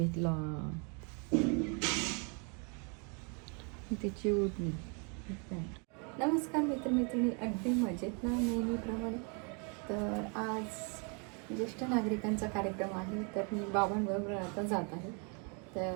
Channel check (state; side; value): quieter; left; 36.3 dB